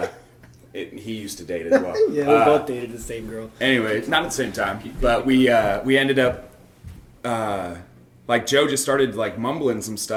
he used to date as well. Yeah, we both dated the same girl. Anyway, not at the same time, but we ended up. Like Joe just started like mumbling some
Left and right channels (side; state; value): both; identical; correlation 1.00